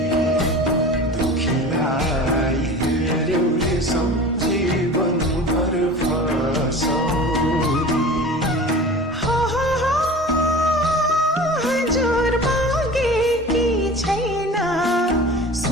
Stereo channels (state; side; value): normal; both; correlation 0.37